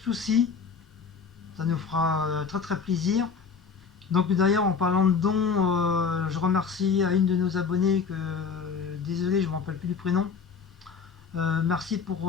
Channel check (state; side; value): quieter; right; 5.7 dB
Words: Ça nous fera très très plaisir. Donc d'ailleurs en parlant de dons, je remercie à une de nos abonnées que désolé je ne me rappelle plus du prénom. Merci